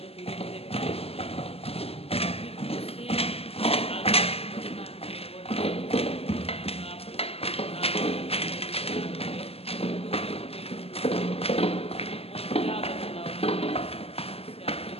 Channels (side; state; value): right; late; 0.29 ms